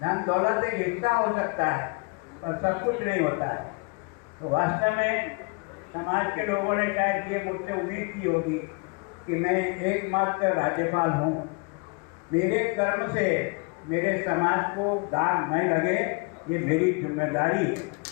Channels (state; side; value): quieter; right; 31.7 dB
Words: दौलत एक हिस्सा हो सकता है और सब कुछ नहीं होता है। तो वास्तव में समाज के लोगों ने शायद ये मुझसे उम्मीद की होगी कि मैं एकमात्र राज्यपाल हूँ, मेरे कर्म से मेरे समाज को दाग नहीं लगे, ये मेरी जिम्मेदारी है।